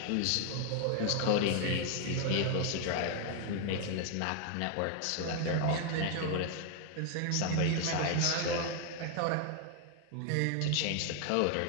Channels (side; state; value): both; different; correlation 0.00